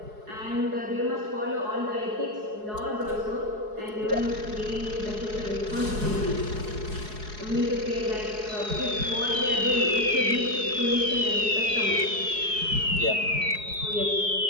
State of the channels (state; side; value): late; left; 4.7 ms